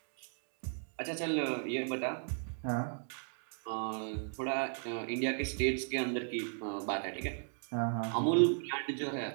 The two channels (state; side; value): silent; left; 54 dB below the other